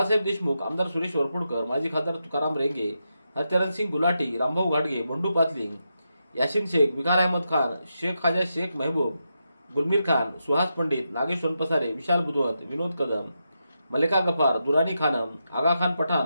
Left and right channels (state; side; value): inverted; both; correlation -0.86